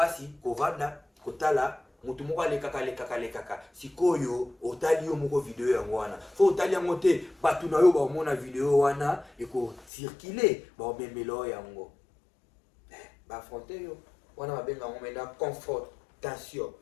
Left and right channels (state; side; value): drops out; right; at 9.9 s